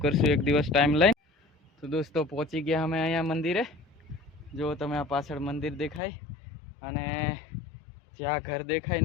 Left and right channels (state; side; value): drops out; right; at 6.0 s